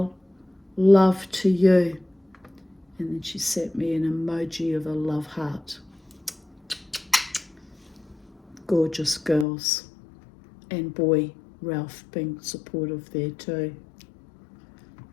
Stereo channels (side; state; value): right; drops out; at 9.5 s